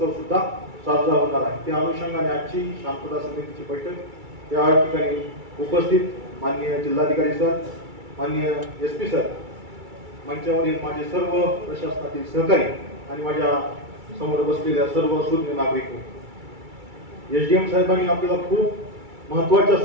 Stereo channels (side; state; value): left; late; 2.3 ms